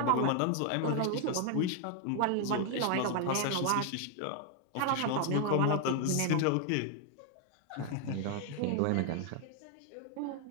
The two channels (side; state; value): both; different; correlation 0.01